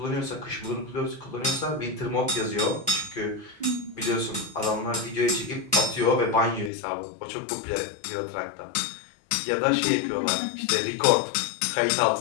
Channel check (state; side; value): drops out; right; at 6.7 s